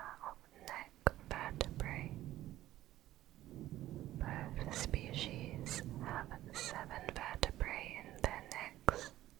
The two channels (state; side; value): quieter; left; 14.5 dB